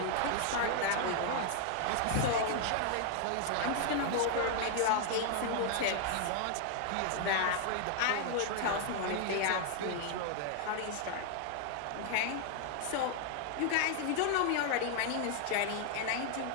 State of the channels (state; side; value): different; both; correlation 0.00